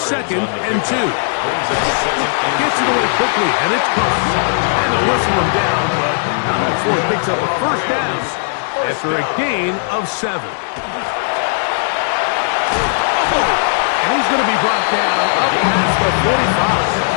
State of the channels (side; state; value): right; silent; 63 dB below the other